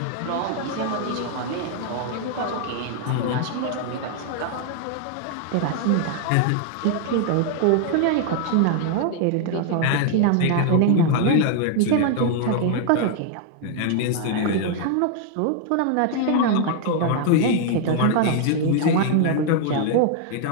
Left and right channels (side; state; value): both; different; correlation 0.00